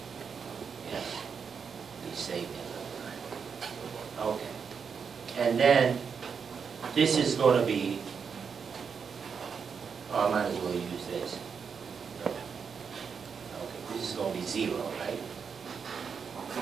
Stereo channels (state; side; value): quieter; left; 6.3 dB